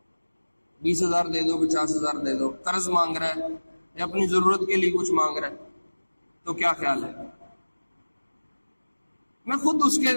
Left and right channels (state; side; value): inverted; both; correlation -1.00